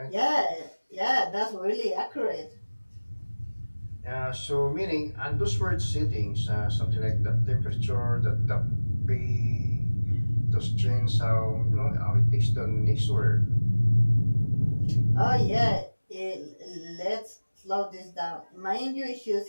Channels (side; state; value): both; inverted; correlation -1.00